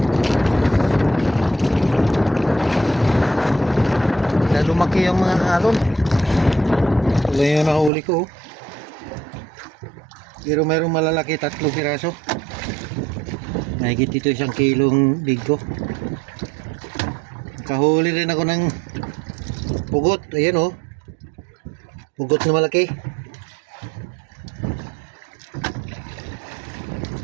Na lumaki yung mga alon. Wala yung nahuli ko. Pero mayroong malalaki, 3 piraso. Nahigit dito 1 kilong bigko. Kahuli rin ako ng pugot. Ayan oh. Pugot na malaki.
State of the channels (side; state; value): left; drops out; at 7.9 s